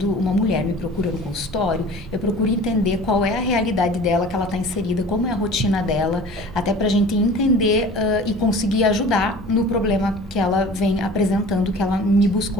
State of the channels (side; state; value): both; normal; correlation 0.42